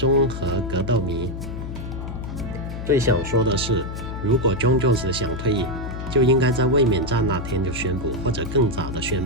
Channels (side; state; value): left; noise; hum, 7 dB below the sound